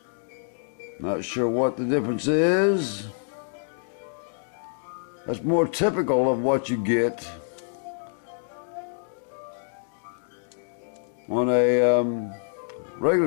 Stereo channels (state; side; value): silent; right; digital silence